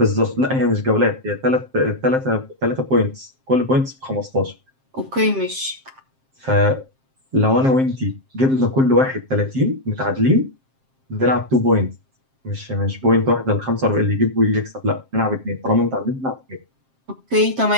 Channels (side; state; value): left; late; 7.6 ms